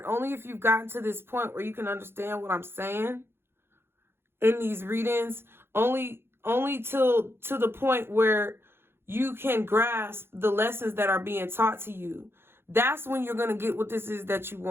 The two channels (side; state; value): left; late; 0.11 ms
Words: Only if you've gotten to this point where you can understand what I'm saying in these readings. Only to the point where you can grasp the lessons that are being taught to you. That's when you're going to get what this is that you